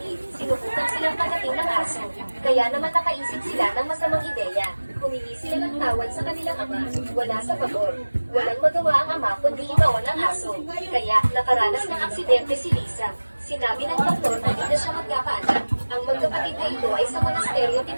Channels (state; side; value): inverted; both; correlation -1.00